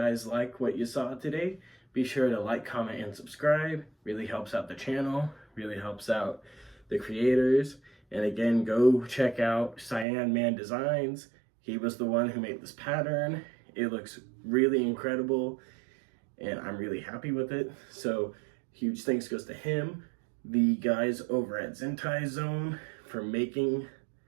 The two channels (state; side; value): drops out; left; at 10.1 s